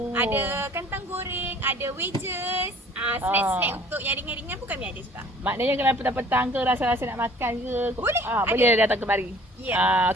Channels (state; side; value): normal; both; correlation 0.52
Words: Ada kentang goreng, ada wedges, snack-snack untuk yang ringan-ringan pun kami ada juga. Maknanya kalau petang-petang ke rasa-rasa nak makan ke, boleh. Boleh datang kemari.